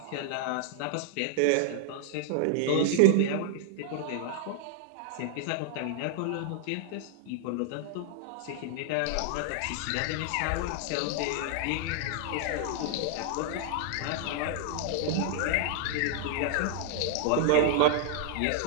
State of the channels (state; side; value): different; both; correlation 0.00